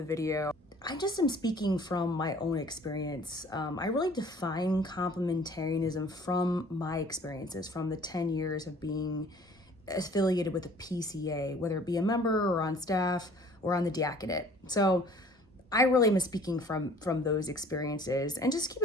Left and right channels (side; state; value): both; normal; correlation 0.53